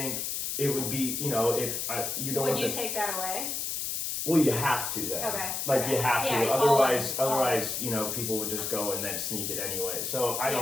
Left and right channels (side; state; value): left; noise; hiss, 2 dB below the sound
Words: it would be, if you don't. Would you take that away? Well, you have to then. Okay. Like you have to. Yeah, Otherwise, people would just go and then sneak it anyway. So I